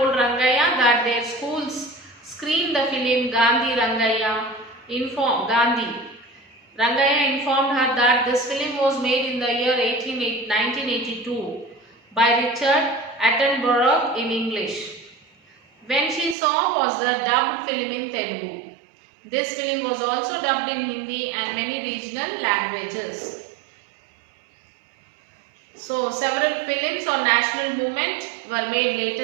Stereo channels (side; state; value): left; drops out; at 16.4 s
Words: that their schools screened the film Gandhi Rangayya. Rangayya informed her that this film was made in the year 1982 by Richard Attenborough in English. When she saw was the dubbed film in Telugu. This film was also dubbed in Hindi and many regional languages. So several films on national movement were made later